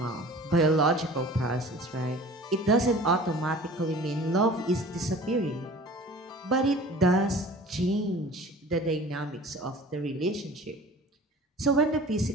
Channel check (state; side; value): normal; both; correlation 0.44